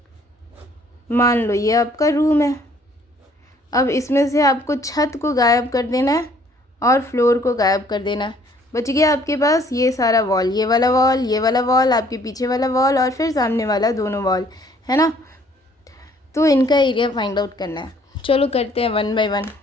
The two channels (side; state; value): both; normal; correlation 0.60